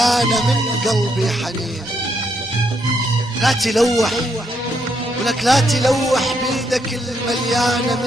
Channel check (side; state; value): both; normal; correlation 0.76